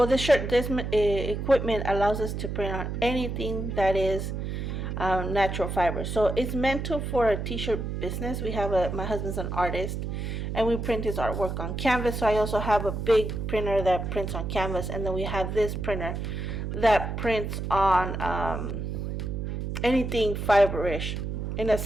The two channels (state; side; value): noise; right; hum, 4 dB below the sound